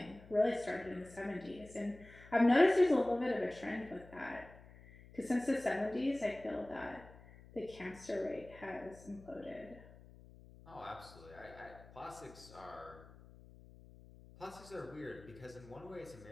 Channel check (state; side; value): noise; left; hum, 20 dB below the sound